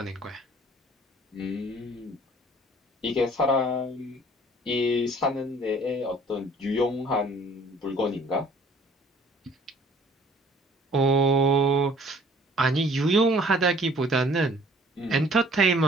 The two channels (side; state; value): both; normal; correlation 0.55